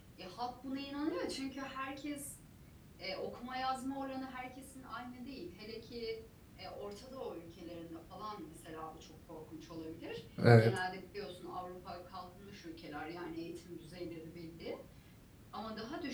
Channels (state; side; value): identical; both; correlation 1.00